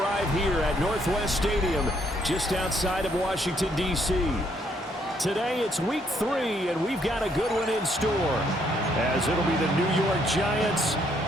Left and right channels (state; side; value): normal; both; correlation 0.70